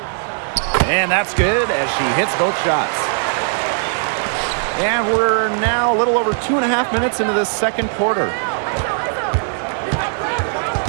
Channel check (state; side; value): silent; left; digital silence